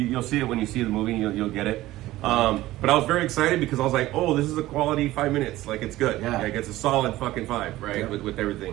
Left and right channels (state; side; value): quieter; left; 16.5 dB